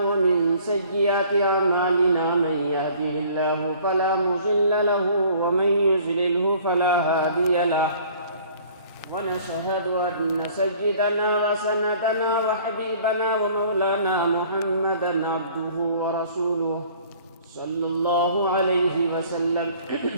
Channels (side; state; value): both; inverted; correlation -0.53